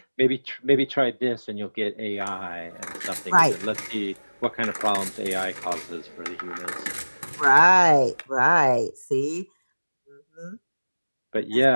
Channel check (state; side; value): inverted; both; correlation -1.00